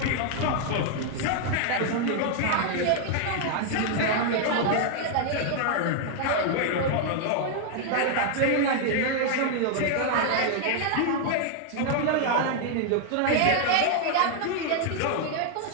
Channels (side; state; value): both; different; correlation 0.00